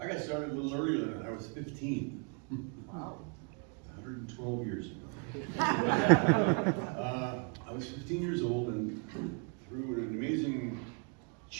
got started a little earlier than that. I was 15. Wow. 112 years ago. I was 15 years old, and through an amazing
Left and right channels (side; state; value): left; quieter; 36.5 dB